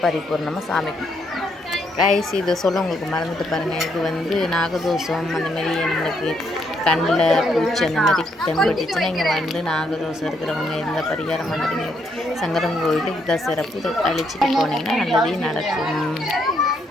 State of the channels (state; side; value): normal; both; correlation 0.74